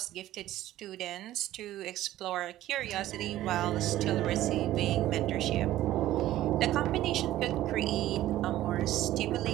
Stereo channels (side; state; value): left; quieter; 14.3 dB